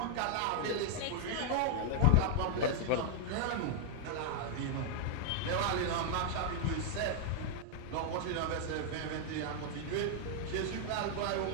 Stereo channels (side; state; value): both; different; correlation 0.00